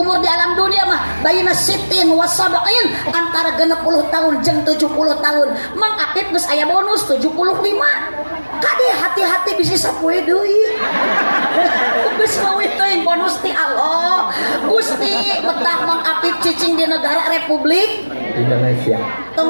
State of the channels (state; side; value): inverted; both; correlation -1.00